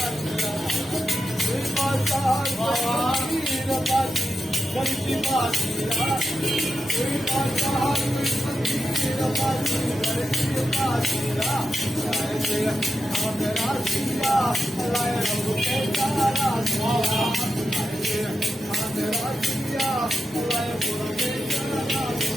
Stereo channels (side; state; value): both; normal; correlation 0.88